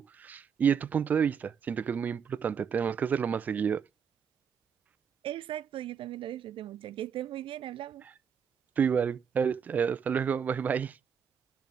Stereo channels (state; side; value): quieter; left; 7.1 dB